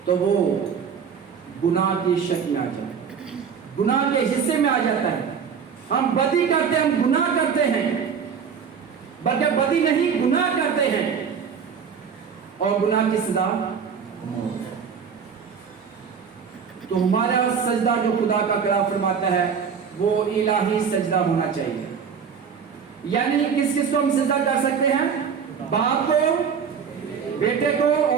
तो वो गुनाह की शक्ल में आ जाता है, गुनाह के हिस्से में आ जाता है। हम बदी करते हैं, हम गुनाह करते हैं, बल्कि बदी नहीं गुनाह करते हैं, और गुनाह की सजा तो हमारा सजदा जो खुदा का कलाम फरमाता है वो इलाही सजदा होना चाहिए। यानी किस किस को हम सजदा कर सकते हैं? बाप को, बेटे को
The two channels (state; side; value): quieter; left; 6.7 dB